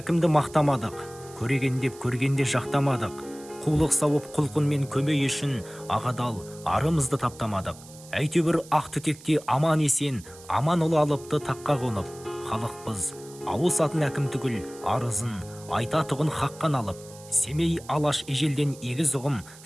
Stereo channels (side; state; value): right; noise; hiss, 20 dB below the sound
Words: мақтамадық, көреген деп көргенде жақтамадық. Қулық сауып құлқынмен көмей үшін ағадал арымызды таптамадық. Әйтеуір ақ түтекте аман есен, аман ұлы алыпты таққа қонып. Халықпыз, ауысатын әкім түгіл, арызын айтатұғын хаққан алып. Семей алаш ежелден егіз ұғым